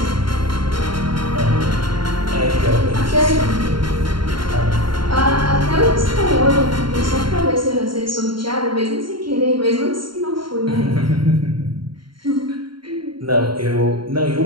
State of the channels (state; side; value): late; left; 0.73 ms